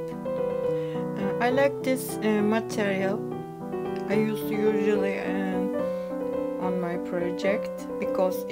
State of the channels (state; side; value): identical; both; correlation 1.00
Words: I like this material. I use usually on my project because